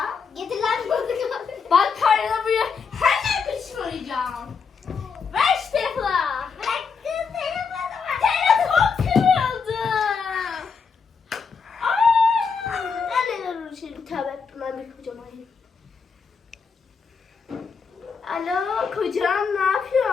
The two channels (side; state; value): right; quieter; 5.6 dB